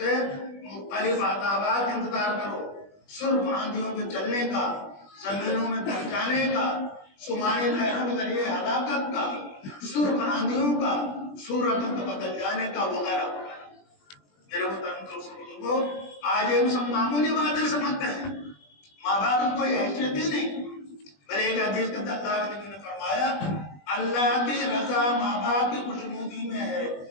مختلف عذابات انتظار کرو. سرخ آندھیوں کے چلنے کا، زمینوں میں دب جانے کا، سمانی لہروں کے ذریعے ہلاکت کا، سرخ آندھیوں کا، صورتوں کو بدل جانے کا وغیرہ. میرے محترم دوستوں، آج ہم سب معمولی باتیں سمجھتے ہیں، ماں باپ کی کوئی حیثیت ہی نہیں. بلے ایک حدیث کے اندر اللہ کے نبی نے فرمایا اللہ کی رضا ماں باپ کی خوشنودی میں ہے،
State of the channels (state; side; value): late; right; 20 ms